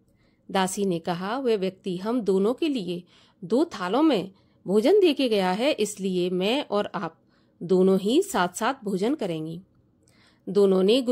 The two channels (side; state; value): both; identical; correlation 1.00